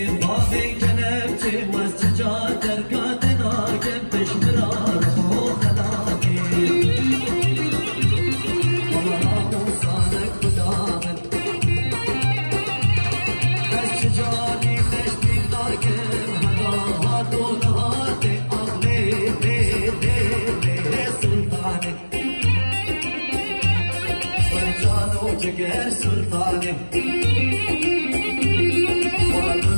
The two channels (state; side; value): inverted; both; correlation -1.00